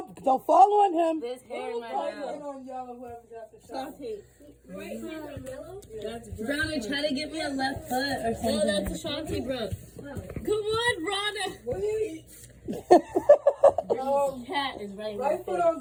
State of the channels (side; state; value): both; identical; correlation 1.00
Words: Don't fall on him. This hair in my Right mouth. foot on yellow, whoever got the shot. Brownie, try to give me a left foot or something. No, that's Ashanti, bro. Come on, Rhonda. Wait. Cat is right. Right foot on